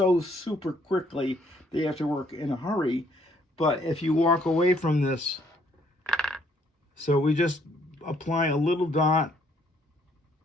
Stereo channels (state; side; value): normal; both; correlation 0.67